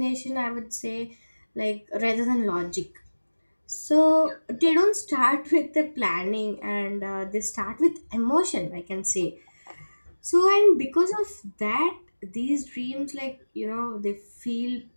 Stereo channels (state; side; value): inverted; both; correlation -1.00